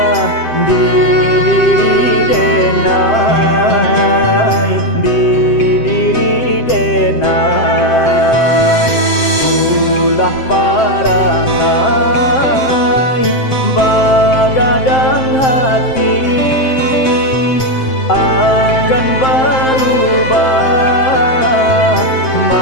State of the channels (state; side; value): late; right; 7.6 ms